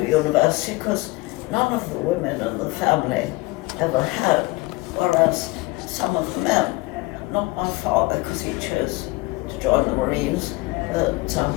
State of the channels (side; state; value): right; quieter; 22.5 dB